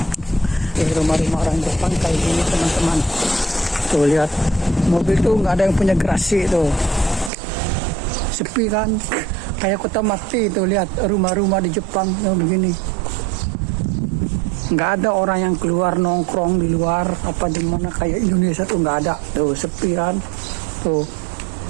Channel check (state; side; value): drops out; left; at 7.3 s